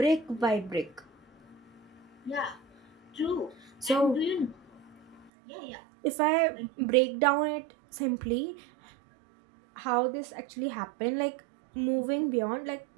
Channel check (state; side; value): drops out; left; at 5.3 s